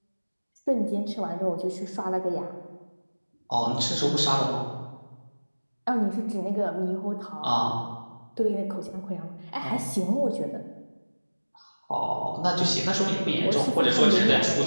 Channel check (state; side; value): inverted; both; correlation -1.00